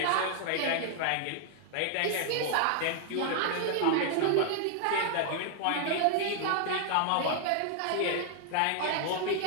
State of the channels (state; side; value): different; both; correlation 0.00